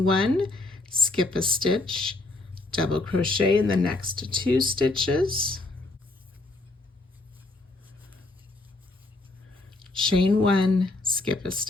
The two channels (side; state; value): right; quieter; 3.0 dB